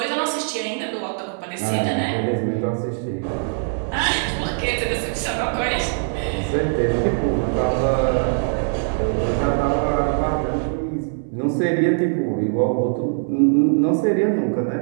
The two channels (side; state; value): left; silent; digital silence